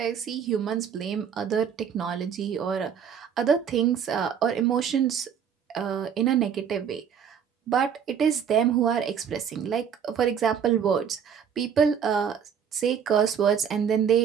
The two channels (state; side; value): quieter; left; 7.7 dB